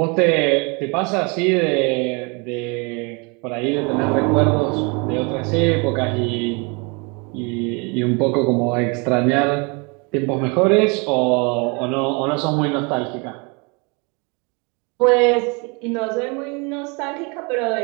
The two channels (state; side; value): quieter; left; 31.2 dB